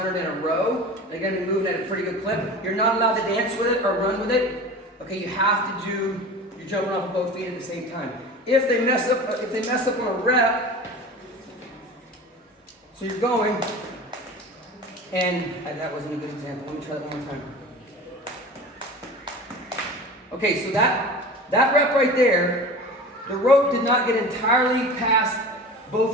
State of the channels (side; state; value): both; normal; correlation 0.35